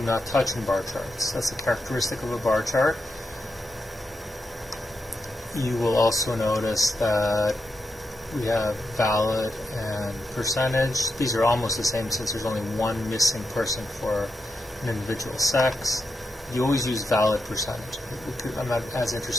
not touch in bar charts. That's a characteristic of a bar chart. You will also notice that we have valid and percentage. These are almost the same since there's only one missing person for an individual sex. You always use valid percentage. I'm not as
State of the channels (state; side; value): normal; both; correlation 0.86